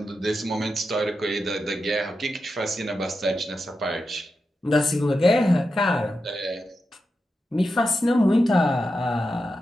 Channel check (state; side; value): normal; both; correlation 0.89